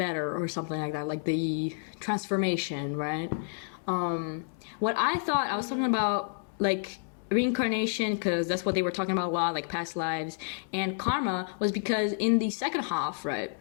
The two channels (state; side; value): silent; right; digital silence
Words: or something like that, like the transformation, right? What I thought, I was talking about like reincarnation, because that's what they were talking about a lot, like past lives, and karma was because in the second half, right,